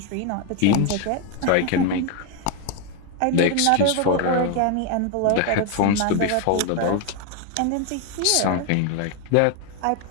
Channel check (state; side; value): different; both; correlation 0.01